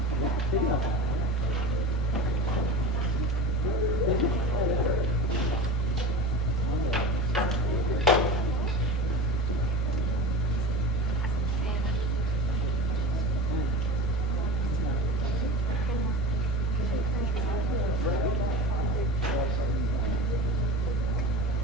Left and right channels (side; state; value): both; normal; correlation 0.32